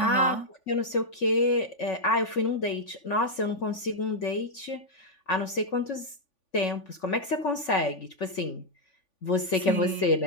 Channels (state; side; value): late; right; 3.5 ms